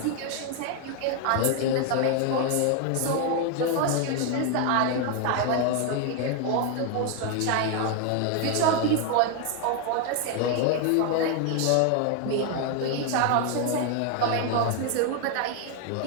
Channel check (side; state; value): both; different; correlation 0.01